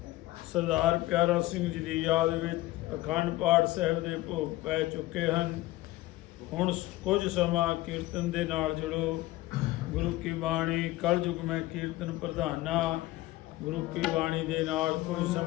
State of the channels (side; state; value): right; quieter; 17.6 dB